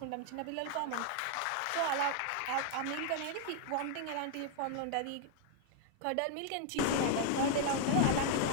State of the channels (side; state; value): both; different; correlation 0.00